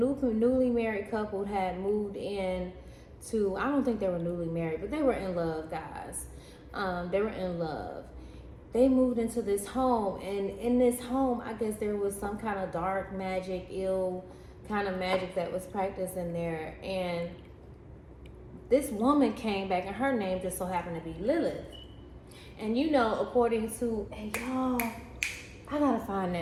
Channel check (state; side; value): identical; both; correlation 1.00